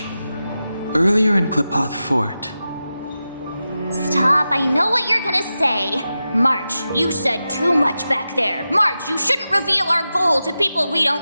Earlier in Klipoth Fort. Stop, I know what you're gonna say! March, you said too much back there! March, you shouldn't reveal our goal to people we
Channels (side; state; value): both; inverted; correlation -0.92